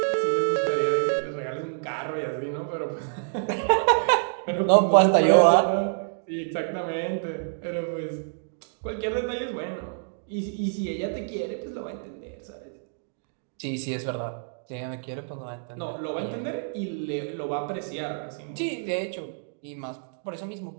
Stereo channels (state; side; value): silent; left; digital silence